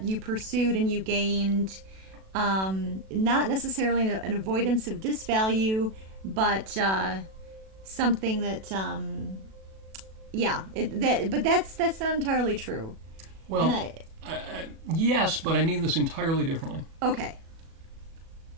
you pursued and you gained, not necessarily an avoidance of disvalue, but something that, but that's not entirely true. Well, yes, but I mean this entirely differently. Okay.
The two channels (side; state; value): left; late; 37 ms